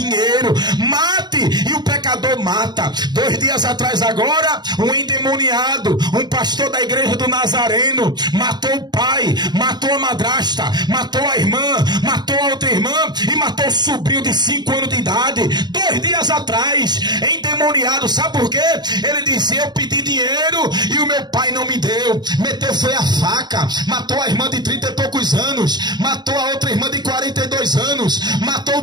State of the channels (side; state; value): left; late; 0.21 ms